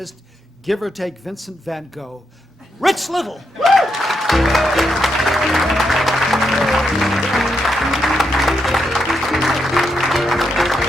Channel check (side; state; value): both; normal; correlation 0.82